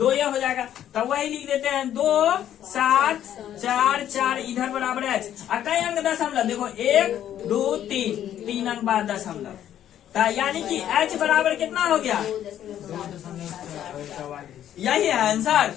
ये हो जाएगा, तो वही लिख देते हैं 2 7 4 4, इधर बराबर है कई अंक दशमलव, देखो 1 2 3 अंक बाद दशमलव, तो यानी कि h बराबर कितना हो गया, यही है आंसर।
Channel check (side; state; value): right; quieter; 10.9 dB